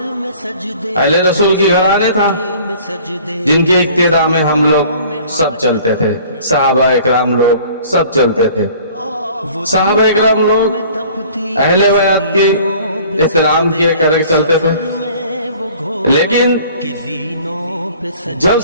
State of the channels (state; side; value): inverted; both; correlation -0.50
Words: اہل رسول کی گھرانے تھا، جن کے اقتداء میں ہم لوگ سب چلتے تھے، صحابہ اکرام لوگ سب چلتے تھے۔ صحابہ اکرام لوگ اہل بیت کے احترام کیے کرے چلتے تھے، لیکن جب